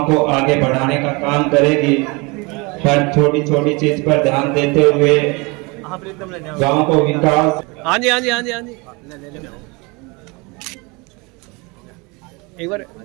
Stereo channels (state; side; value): quieter; left; 27.5 dB